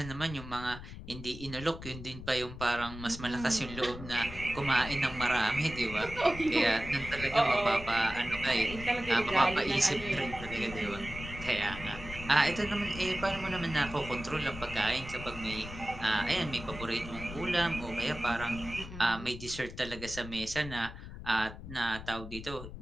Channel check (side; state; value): left; noise; rumble, 12 dB below the sound